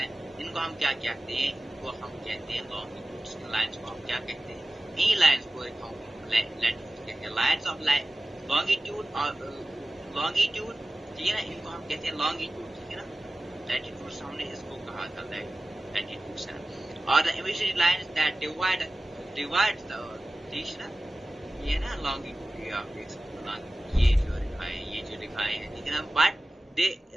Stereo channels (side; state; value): both; normal; correlation 0.96